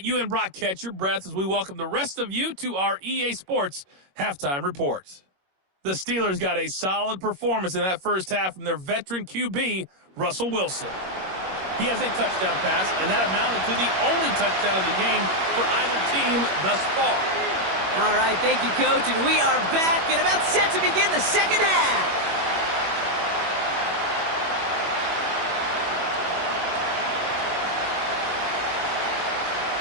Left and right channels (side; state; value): left; late; 21 ms